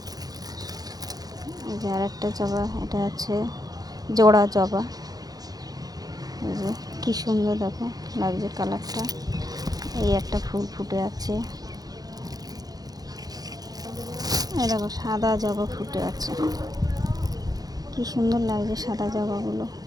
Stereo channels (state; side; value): late; left; 0.19 ms